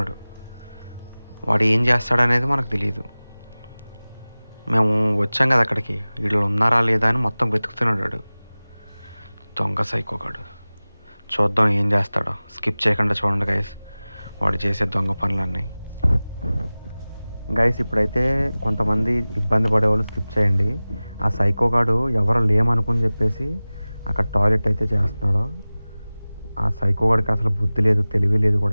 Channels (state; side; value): inverted; both; correlation -0.98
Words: వాడు ఏం చేస్తాడనేది మనకు తెలియదు. మేము వచ్చాం కదా అక్కడికి, వీళ్ళు ఉన్నారా లేదా అని మొత్తం వెతుకుతున్నాడు వాడు. దొంగ సైకోగాడు. చూద్దాం ఏం చేస్తాడో. స్కిప్ చేయకుండా చూడండి గైస్ వాడు చేసే దొంగ పనులన్నీ. గైస్ ఇప్పుడైతే కొంతమంది ఇబ్బంది పడేవాళ్ళు స్కిప్ చేయండి. ఆ సైకోగాడు ఎవరు లేమనుకుని చెప్పేసి అక్కడ టాయిలెట్ అయితే చేస్తున్నాడు. ఆ సైకోగాడికి అసలు బుద్ధి లేదు, తెలివి లేదు